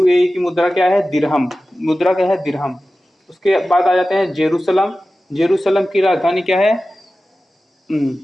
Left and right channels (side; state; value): both; normal; correlation 0.95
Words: की मुद्रा क्या है? दिरहम। मुद्रा क्या है? दिरहम। उसके बाद आ जाते हैं जेरूसलम। जेरूसलम की राजधानी क्या है?